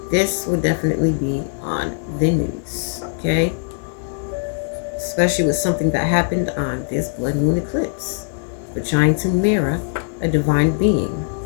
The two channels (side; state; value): right; silent; digital silence